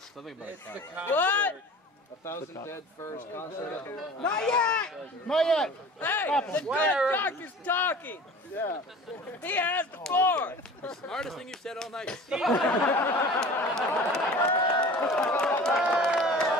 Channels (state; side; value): normal; both; correlation 0.42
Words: about What? 1,000 dead furs concert. Not yet! Not yet! Hey, the good doctor's talking! Yeah. He has the floor! The smartest thing you've said all night.